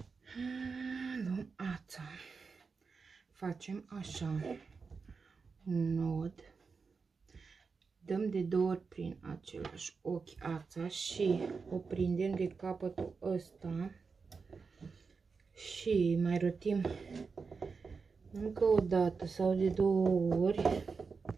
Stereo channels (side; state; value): left; quieter; 4.9 dB